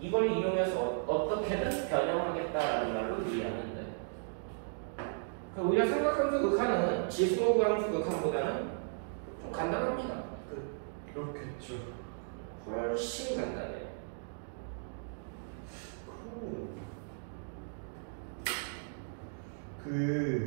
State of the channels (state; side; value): silent; left; digital silence